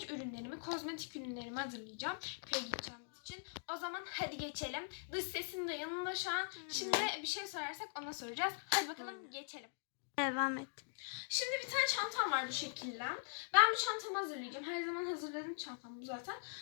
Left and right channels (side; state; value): right; silent; digital silence